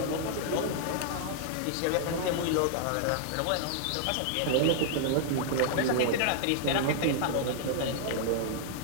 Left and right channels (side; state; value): both; different; correlation -0.01